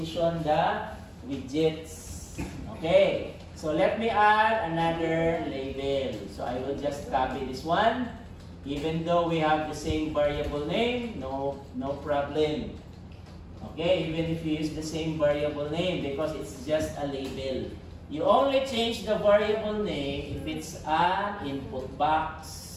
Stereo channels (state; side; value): identical; both; correlation 1.00